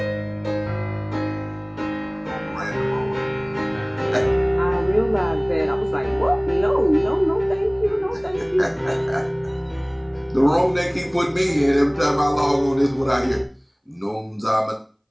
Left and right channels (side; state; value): both; identical; correlation 1.00